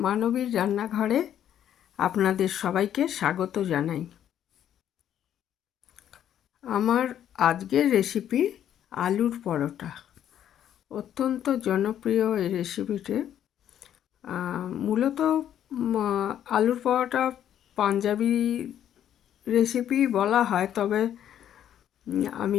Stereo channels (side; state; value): right; quieter; 10.4 dB